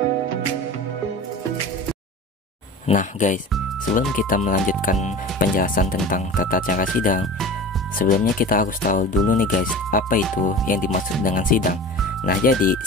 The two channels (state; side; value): normal; both; correlation 0.35